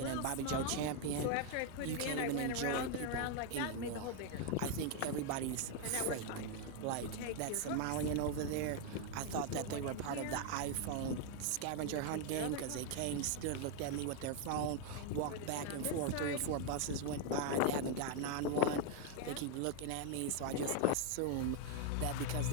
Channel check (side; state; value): both; different; correlation 0.01